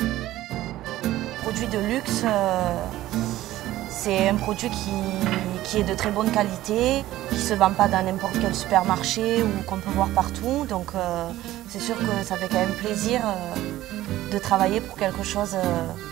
Produit de luxe, c'est un produit qui est de très bonne qualité, qui ne se vend pas dans n'importe quel supermarché ou qu'on peut voir partout. Donc c'est sûr que ça fait quand même plaisir de travailler pour quelque chose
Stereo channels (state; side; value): quieter; left; 15.1 dB